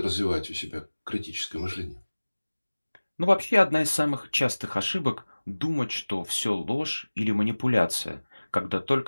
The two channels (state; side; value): inverted; both; correlation -1.00